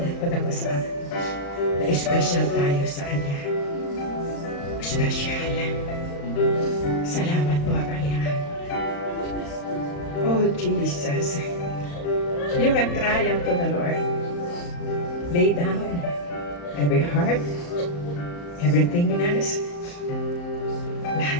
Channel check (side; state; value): right; late; 35 ms